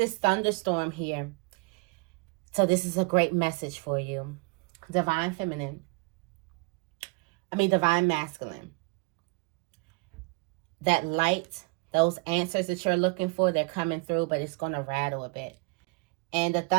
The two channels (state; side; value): quieter; left; 29.9 dB